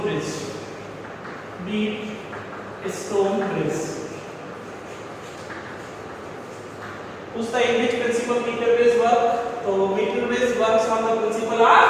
bridge. What's the English principle meter bridge work? तो meter bridge works on the principle of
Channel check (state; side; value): identical; both; correlation 1.00